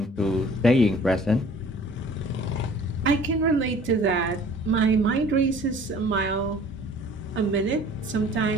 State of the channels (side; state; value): both; normal; correlation 0.50